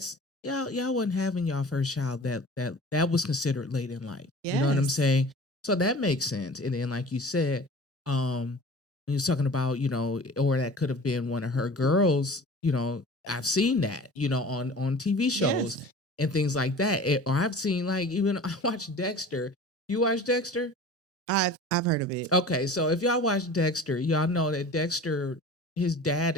y'all wasn't having y'all first child that was considered late in life. Yes. You know what I'm saying? So that makes sense. And then like you said, when you're talking about, or that could have been one of her girls, I've seen that, on TV shows and things like that. Or I've seen like, even I watched Dexter. You watch Dexter? I've heard of it. Okay, so if y'all watch Dexter, y'all know that Dexter, his dad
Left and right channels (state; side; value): normal; both; correlation 0.41